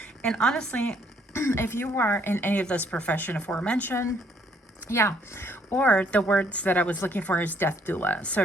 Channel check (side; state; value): both; normal; correlation 0.66